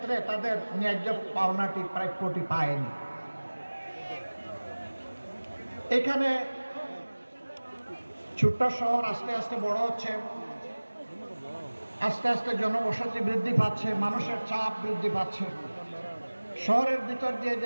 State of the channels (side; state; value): both; inverted; correlation -1.00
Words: তাদের ন্যায্য পাওনাটি প্রাপ্যটি পায়নি। এখানে ছোট্ট শহর আস্তে আস্তে বড় হচ্ছে, আস্তে আস্তে জনবসতি বৃদ্ধি পাচ্ছে, মানুষের চাপ বৃদ্ধি পাচ্ছে। শহরের ভিতর দিয়ে